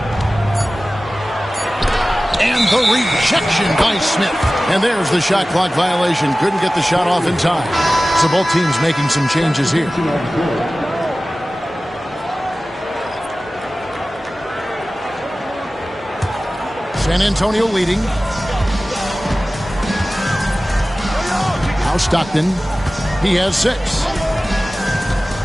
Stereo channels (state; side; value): normal; both; correlation 0.97